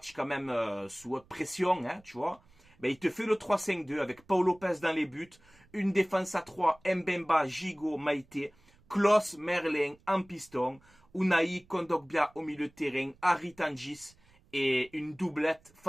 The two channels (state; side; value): noise; right; rumble, 30 dB below the sound